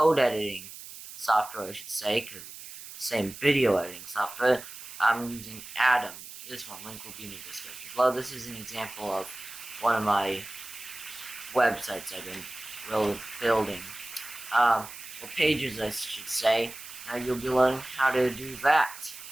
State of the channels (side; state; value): right; noise; hiss, 13 dB below the sound